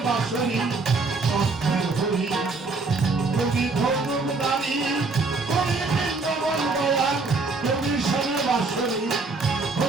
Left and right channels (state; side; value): quieter; left; 3.8 dB